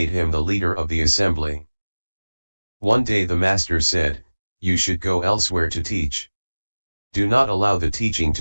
him the leader of the assembly. One day the master said, you should go elsewhere to teach. Do not allow the teaching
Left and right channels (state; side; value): inverted; both; correlation -1.00